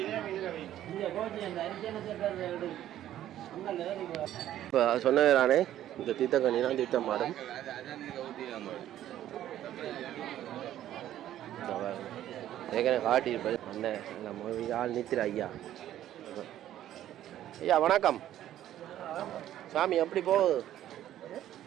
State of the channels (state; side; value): quieter; left; 12.3 dB